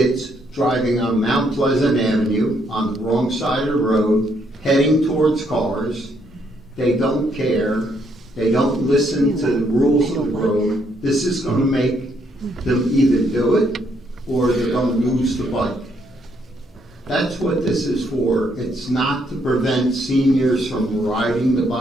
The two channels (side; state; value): both; normal; correlation 0.72